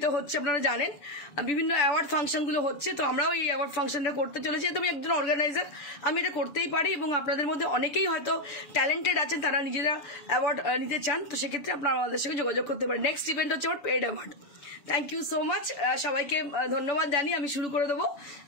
হচ্ছে, আপনারা জানেন, বিভিন্ন অ্যাওয়ার্ড ফাংশনগুলো হচ্ছে। তো আমরাও এই অ্যাওয়ার্ড ফাংশনটা করতে চলেছি। তো আমি একজন অর্গানাইজার, আমি এটা করতেই পারি, এবং আপনাদের মধ্যে অনেকেই হয়তো ট্যালেন্টেড আছেন, তারা নিজেরা অ্যাওয়ার্ড নিতে চান, তো সেক্ষেত্রে আপনারা আমাদের সঙ্গে যোগাযোগ করতে পারেন। নেক্সট ইভেন্ট হচ্ছে আমার paid award. Thank you so much, সবাইকে ধন্যবাদ জানিয়ে আমি শুরু করে দেবো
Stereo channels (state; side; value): late; right; 6.9 ms